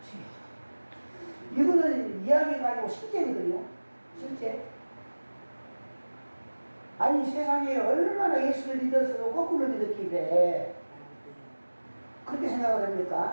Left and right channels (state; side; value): inverted; both; correlation -1.00